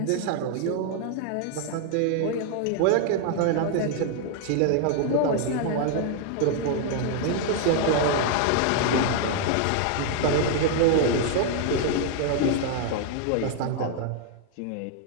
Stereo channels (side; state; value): both; different; correlation 0.00